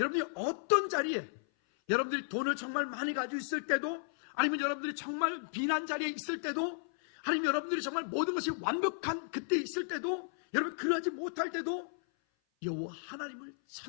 어떤 자리에, 여러분들이 돈을 정말 많이 가지고 있을 때도, 아니면 여러분들이 정말 비난 자리에 있을 때도, 아니면 여러분들이 정말 모든 것이 완벽한 그때 있을 때도, 여러분 그러하지 못할 때도 여호와 하나님을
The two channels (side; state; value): right; silent; 55 dB below the other